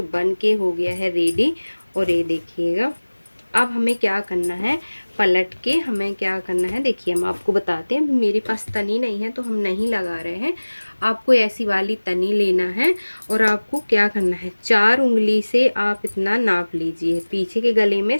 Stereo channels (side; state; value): both; inverted; correlation -1.00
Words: बन के हो गया है रेडी। और ये देखिएगा अब हमें क्या करना है, पलट के हमें क्या करना है, देखिए हम आपको बताते हैं। मेरे पास तनी नहीं है तो हम नहीं लगा रहे हैं। आपको ऐसी वाली तनी लेना है और आपको क्या करना है, 4 उंगली से आप इतना नाप लीजिए पीछे के गले में